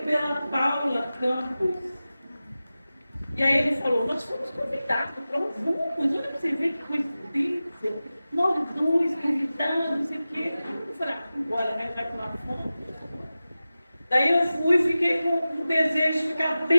pela Paula Campos. E aí ele falou, nós fomos convidados, vamos, olha para você ver que coincidência. Nós dois convidados, não sei o quê. Eu falei, bora, né? Já que nós fomos. Daí eu fui e fiquei com o desejo de ficar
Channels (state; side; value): inverted; both; correlation -0.95